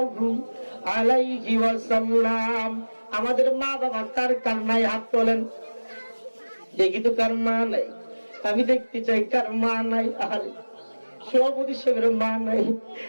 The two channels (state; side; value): inverted; both; correlation -1.00